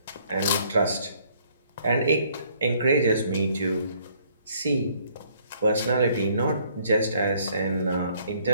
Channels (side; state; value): both; inverted; correlation -0.63